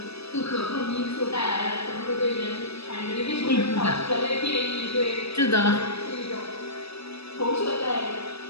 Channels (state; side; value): late; right; 0.78 ms